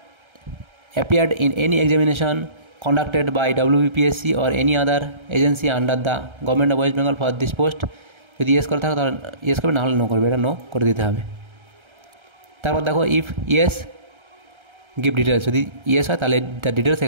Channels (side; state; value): left; late; 1.3 ms